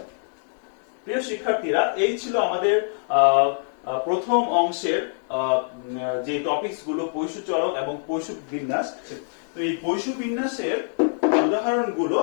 প্রিয় শিক্ষার্থীরা, এই ছিল আমাদের প্রথম অংশের যে টপিকস গুলো পৈশু চলক এবং পৈশু বিন্যাস। তো এই পৈশু বিন্যাসের উদাহরণগুলো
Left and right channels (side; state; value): right; silent; digital silence